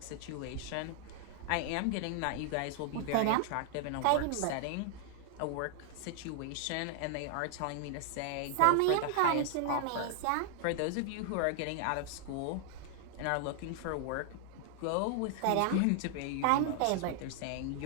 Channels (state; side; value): different; both; correlation 0.00